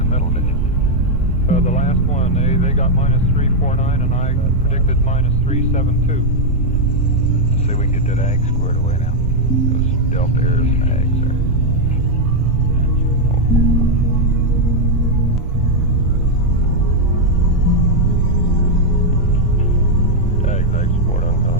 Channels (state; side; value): noise; right; rumble, 4 dB below the sound